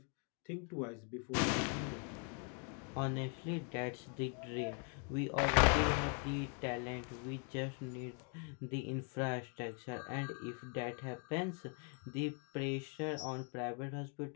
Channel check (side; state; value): right; quieter; 39.1 dB